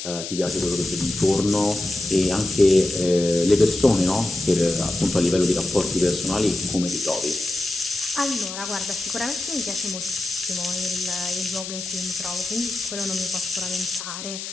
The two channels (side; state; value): left; noise; hiss, 8 dB below the sound